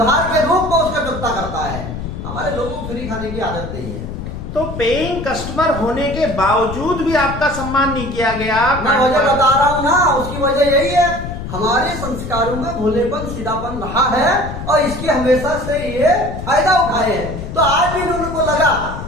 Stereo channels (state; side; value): noise; left; rumble, 8 dB below the sound